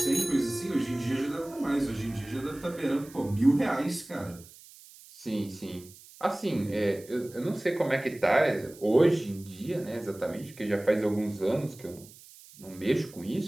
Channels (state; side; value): noise; right; hiss, 21 dB below the sound